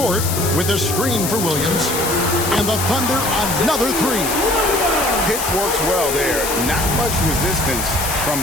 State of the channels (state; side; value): noise; left; hiss, 3 dB below the sound